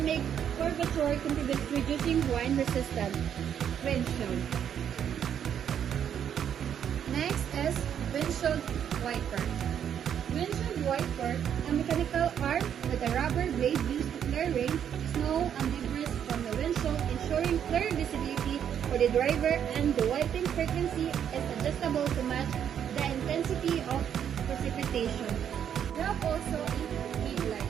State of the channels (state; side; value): quieter; left; 8.9 dB